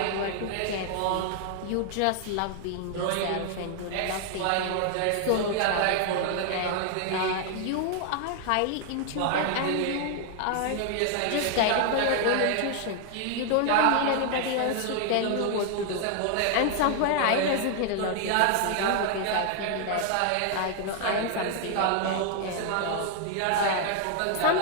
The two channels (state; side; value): different; both; correlation 0.00